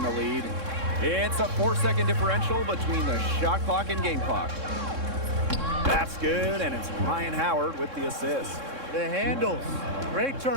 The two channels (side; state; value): left; late; 3.6 ms